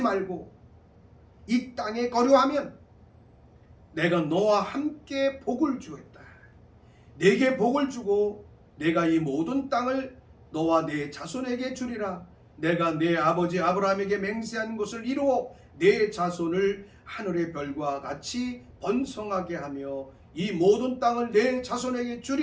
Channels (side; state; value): both; identical; correlation 1.00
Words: 말고 이 땅에 거류하면 내가 너와 함께 복을 주겠다. 내게 복을 주고 내가 이 모든 땅을 너와 내 자손에게 주리라. 내가 내 아버지 아브라함에게 맹세한 것을 이루어 내 자손을 하늘의 별과 같이 번성하게 하며 이 모든 땅을 내 자손에게